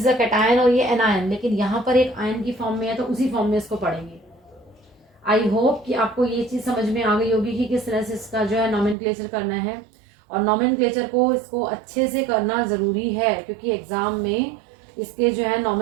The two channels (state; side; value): drops out; left; at 9.0 s